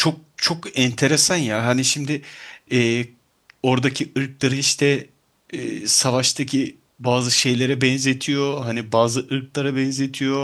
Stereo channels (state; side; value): identical; both; correlation 1.00